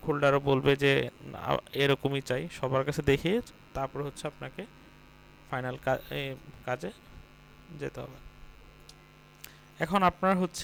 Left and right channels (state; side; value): identical; both; correlation 1.00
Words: হোল্ডারও বলবে যে এরকমই চাই, সবার কাছে দেখিয়ে তারপর হচ্ছে আপনাকে ফাইনাল কাজে যেতে হবে। এখন আপনার